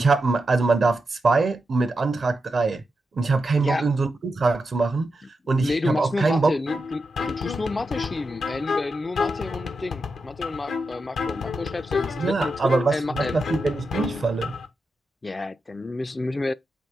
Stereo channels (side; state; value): both; normal; correlation 0.88